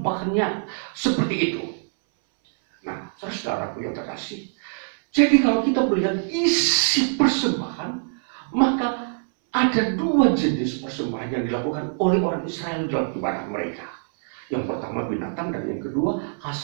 seperti itu. Nah, saudara-saudaraku yang terkasih, jadi kalau kita melihat isi persembahan, maka ada dua jenis persembahan yang dilakukan oleh orang Israel dalam ibadah mereka. Yang pertama binatang, dan yang kedua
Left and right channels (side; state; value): left; silent; 63 dB below the other